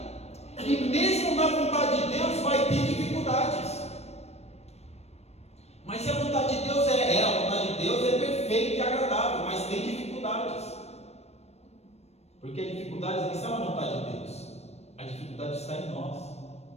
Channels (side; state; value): right; late; 0.31 ms